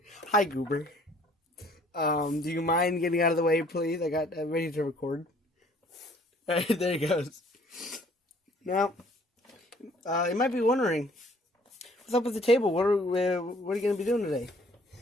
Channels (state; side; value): normal; both; correlation 0.58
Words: Hi Goober. Do you mind getting out of the way, please? I got ready to record. Alright, there he goes. Now, you might be wondering, what's up with the table? What are you gonna be doing today?